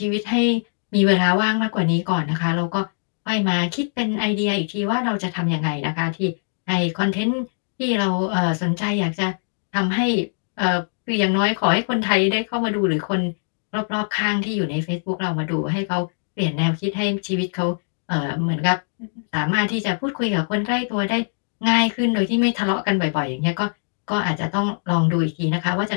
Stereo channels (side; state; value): right; silent; digital silence